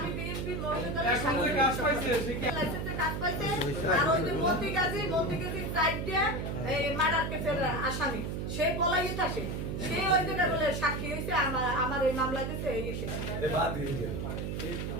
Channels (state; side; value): noise; right; hum, 3 dB below the sound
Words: বিএমপি মহিলাদের সাথে কাজ পাইছে, লাইসেন্সে কাজ পাইছে। আর ওই যে মন্ত্রী গাজী সাইড দিয়ে এই মার্ডার কেসের আসামি, সে পলাইয়ে থাকে, সে ওই জায়গা বলে সাক্ষী হয়েছে আমার এই মামলা দিতে এই